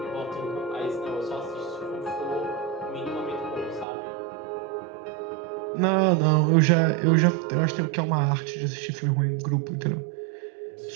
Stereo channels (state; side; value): drops out; left; at 3.9 s